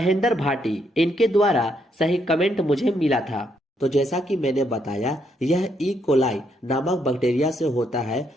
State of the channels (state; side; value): normal; both; correlation 0.75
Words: भाटी। इनके द्वारा सही कमेंट मुझे मिला था। तो जैसा कि मैंने बताया, यह ई कोलाई नामक बैक्टीरिया से होता है,